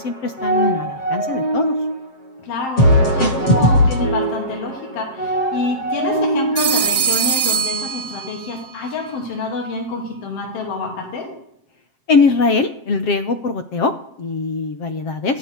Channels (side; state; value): right; late; 7.6 ms